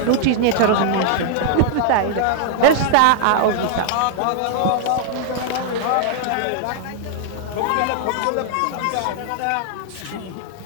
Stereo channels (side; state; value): both; different; correlation -0.01